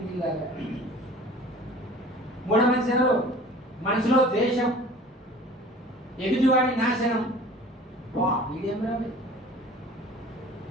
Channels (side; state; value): both; normal; correlation 0.45